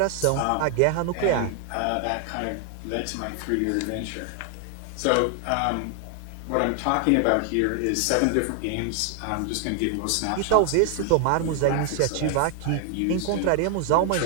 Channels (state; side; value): different; both; correlation 0.00